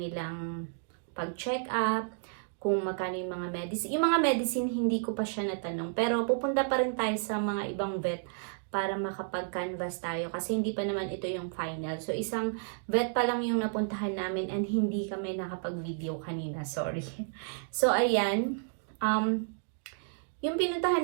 pag-check up, kung magkano yung mga medicine. Yung mga medicine, hindi ko pa siya natanong. Pero pupunta pa rin tayo sa mga ibang vet para makapag-canvas tayo. Kasi hindi pa naman ito yung final. So, isang vet pa lang yung napuntahan namin and hindi kami nakapag-video kanina. Sorry. So, ayan. Yung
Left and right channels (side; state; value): left; silent; digital silence